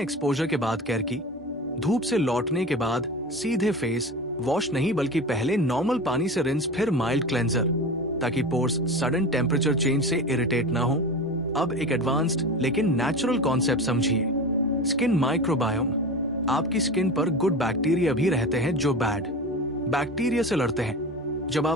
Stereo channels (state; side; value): normal; both; correlation 0.29